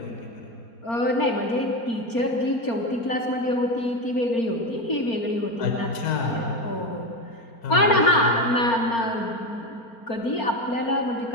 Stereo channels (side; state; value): right; late; 4.3 ms